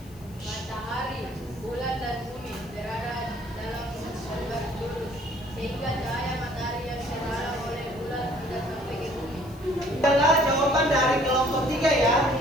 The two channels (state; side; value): noise; left; hiss, 25 dB below the sound